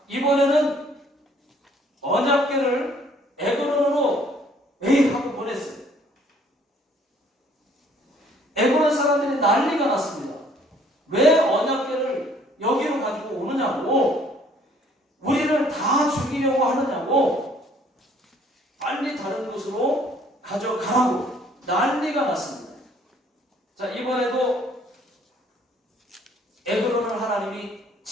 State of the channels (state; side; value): normal; both; correlation 0.60